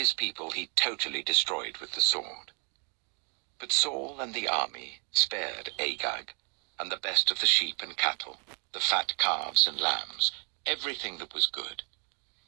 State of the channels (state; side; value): quieter; left; 38.0 dB